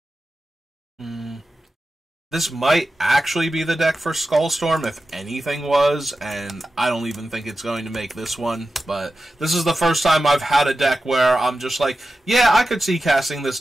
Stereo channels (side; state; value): both; normal; correlation 0.93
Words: This might actually be the deck for Skullstorm, if anything was, and I don't even think it's going to make this one, but this is the first time I've had a deck where I'm just like, yeah, I could see casting this